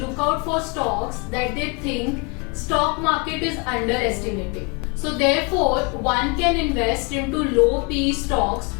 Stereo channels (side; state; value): right; quieter; 30.7 dB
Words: out for stocks that they think stock market is underestimating. So therefore, one can invest into low PE stocks